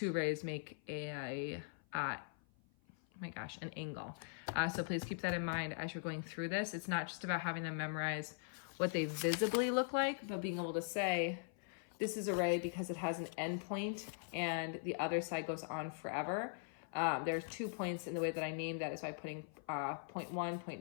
rays make an angle. So please keep that in mind as you're going through this. It's not just about having them memorize what they visibly look like, but being able to say, this is a ray because it has an end point and the other side goes on forever. There's 2 points in the way that I named that is by putting point 1,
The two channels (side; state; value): right; silent; 50 dB below the other